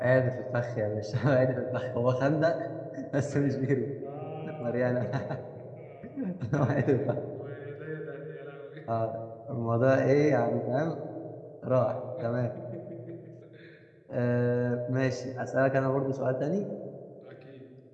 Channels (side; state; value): both; identical; correlation 1.00